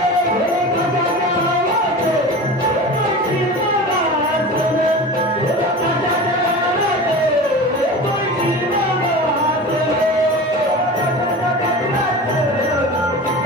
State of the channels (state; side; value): normal; both; correlation 0.33